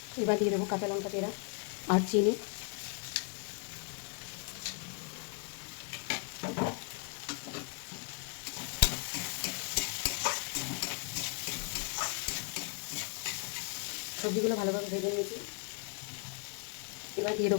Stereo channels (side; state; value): right; quieter; 36.6 dB